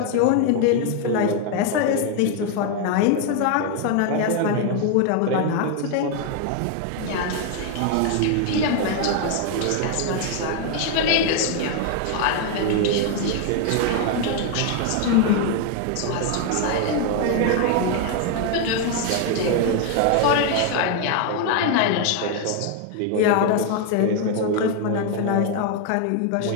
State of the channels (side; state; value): both; different; correlation 0.01